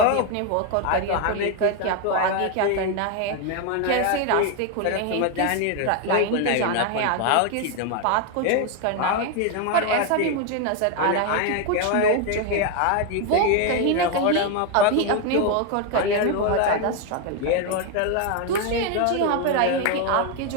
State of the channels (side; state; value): both; different; correlation 0.01